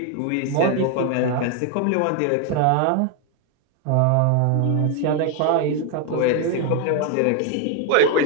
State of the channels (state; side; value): different; both; correlation 0.01